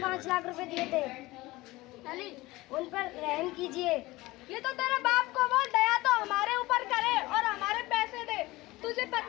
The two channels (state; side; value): quieter; right; 19.8 dB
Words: 5 लाख रुपए दिए थे। अली उन पर रहम कीजिए। ये तो तेरे बाप को बोल, दया तो हमारे ऊपर करे और हमारे पैसे दे। तुझे